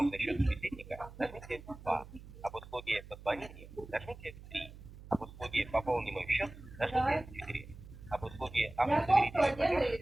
на счет собеседника, нажмите 2. Об услуге позвонить, нажмите 3. Об услуге пополни мой счет, нажмите 4. Об услуге автодоверительный платеж,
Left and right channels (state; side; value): noise; right; hum, 17 dB below the sound